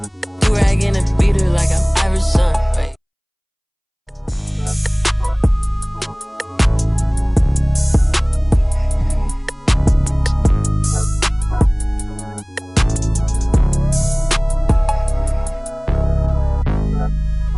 Do-rag in a beater like I'm Iverson. Right.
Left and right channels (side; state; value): both; identical; correlation 1.00